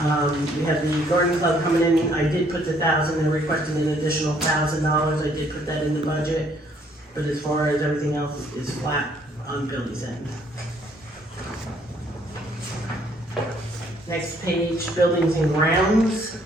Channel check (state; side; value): normal; both; correlation 0.65